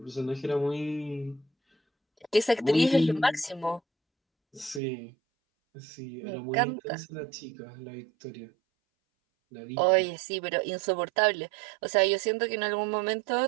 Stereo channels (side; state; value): left; drops out; at 4.8 s